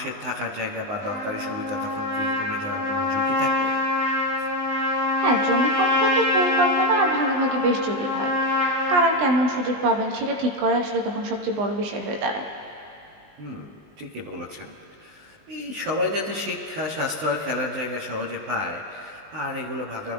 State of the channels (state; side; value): late; left; 20 ms